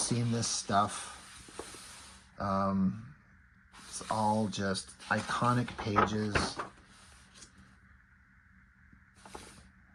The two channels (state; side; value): identical; both; correlation 1.00